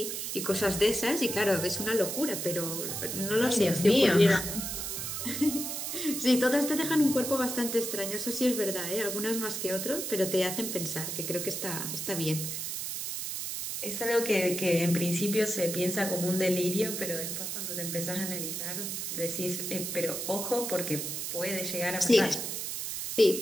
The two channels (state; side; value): noise; right; hiss, 4 dB below the sound